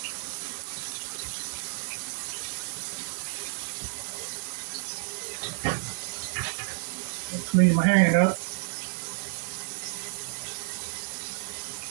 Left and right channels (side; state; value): left; silent; 58 dB below the other